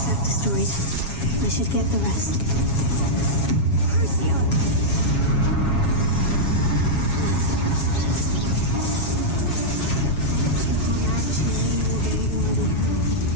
Destroyed. I should get the rest. Crucio! You can't actually any more than you already have.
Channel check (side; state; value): right; late; 7.3 ms